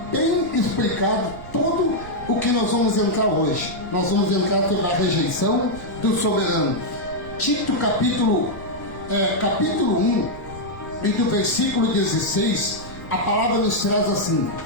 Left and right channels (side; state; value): right; noise; rumble, 15 dB below the sound